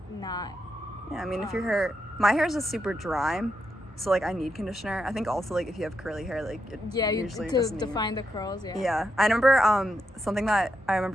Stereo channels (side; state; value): both; normal; correlation 0.83